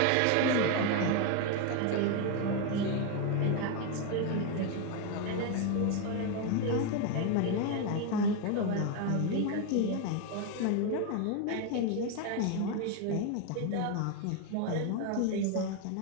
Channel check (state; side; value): different; both; correlation 0.02